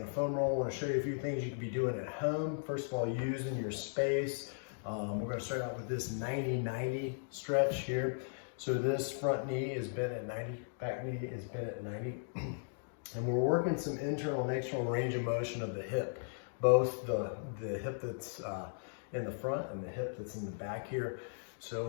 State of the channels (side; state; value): right; silent; digital silence